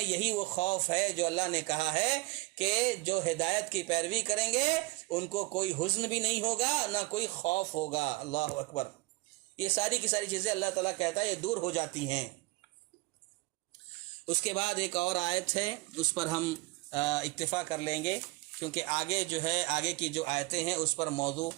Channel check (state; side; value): quieter; left; 23.0 dB